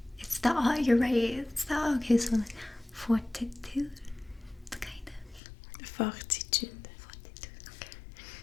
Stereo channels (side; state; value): right; drops out; at 5.4 s